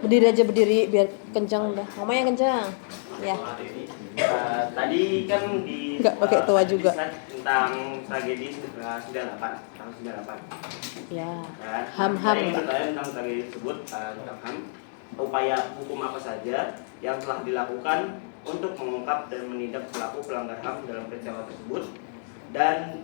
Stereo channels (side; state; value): right; silent; digital silence